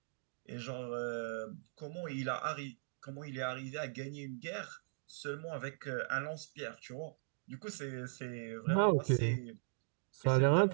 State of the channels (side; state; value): left; silent; digital silence